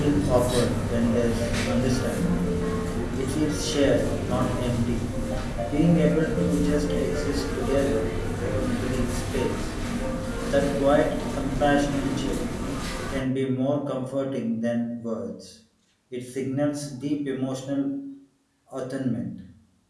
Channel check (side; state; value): both; identical; correlation 1.00